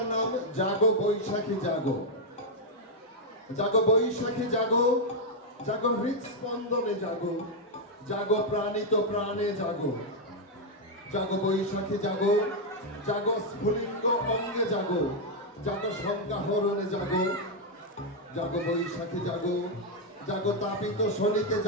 নাম জাগো বৈশাখী জাগো। জাগো বৈশাখী জাগো, জাগো হৃৎস্পন্দনে জাগো, জাগো প্রাণিত প্রাণে জাগো। জাগো বৈশাখী জাগো, জাগো স্ফুলিঙ্গ অঙ্গে জাগো, জাগো সংজ্ঞাহরণে জাগো। জাগো বৈশাখী জাগো, জাগো তাপিত শনিতে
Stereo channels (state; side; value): normal; both; correlation 0.00